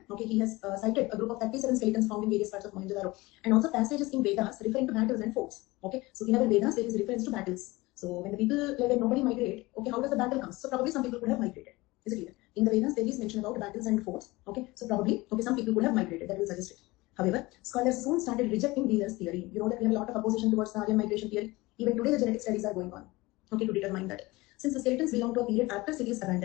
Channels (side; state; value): right; quieter; 21.4 dB